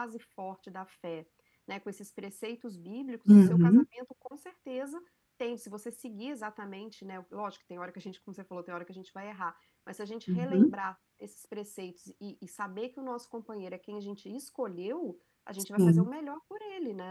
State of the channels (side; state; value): both; identical; correlation 1.00